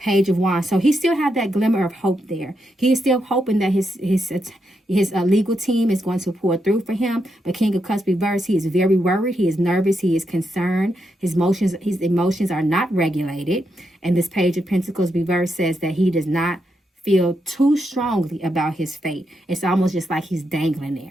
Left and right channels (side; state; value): both; normal; correlation 0.83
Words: of Wands. So he still had that glimmer of hope there. He is still hoping that his legal team is going to pour through for him. But King of Cups reverse, he is very worried. He is nervous. He is concerned. His emotions are not regulated. And this Page of Pentacles reverse says that he does not feel too strongly about his fate. It's almost just like he's dangling